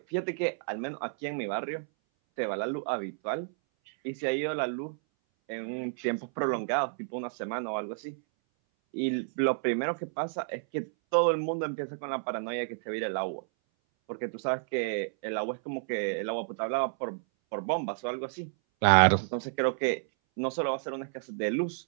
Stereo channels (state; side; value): silent; left; 57 dB below the other